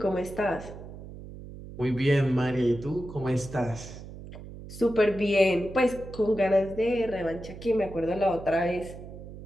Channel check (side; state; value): right; noise; hum, 13 dB below the sound